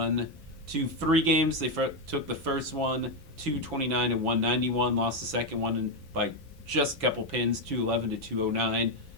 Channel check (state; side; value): normal; both; correlation 0.06